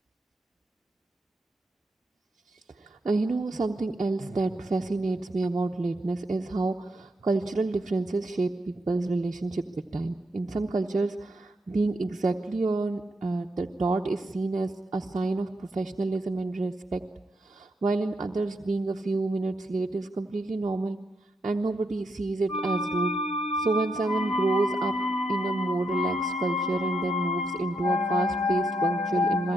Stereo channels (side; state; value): both; normal; correlation 0.81